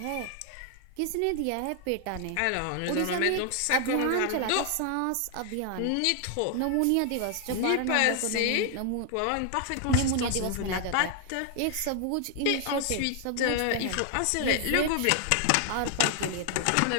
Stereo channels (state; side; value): different; both; correlation 0.00